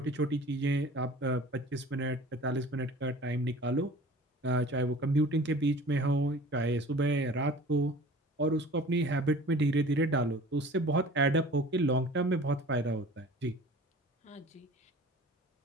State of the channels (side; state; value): both; normal; correlation 0.44